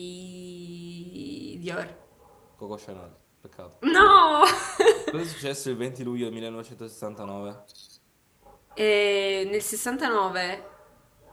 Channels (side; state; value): both; identical; correlation 1.00